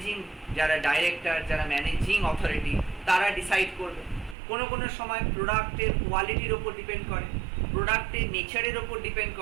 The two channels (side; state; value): left; drops out; at 4.4 s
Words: যারা ডাইরেক্টর, যারা ম্যানেজিং অথরিটি, তারা ডিসাইড করবে। কোনো কোনো সময় প্রোডাক্টের কোয়ালিটির ওপর ডিপেন্ড করে, প্রোডাক্টের নেচারের ওপর ডিপেন্ড